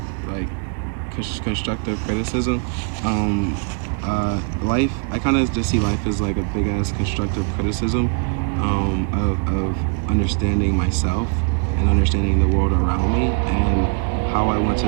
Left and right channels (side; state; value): left; quieter; 34.9 dB